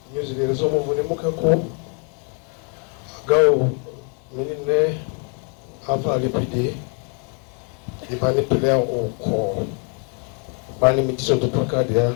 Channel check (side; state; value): right; quieter; 38.8 dB